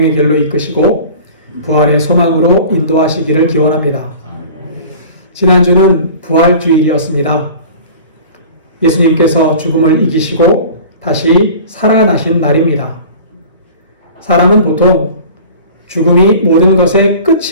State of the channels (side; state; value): both; inverted; correlation -0.41